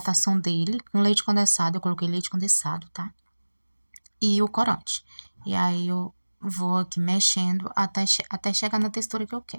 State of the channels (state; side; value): inverted; both; correlation -1.00